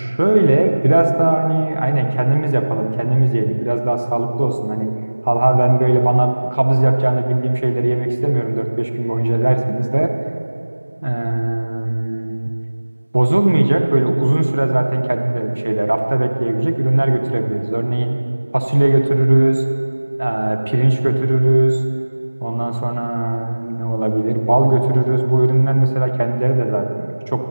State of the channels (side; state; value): both; inverted; correlation -1.00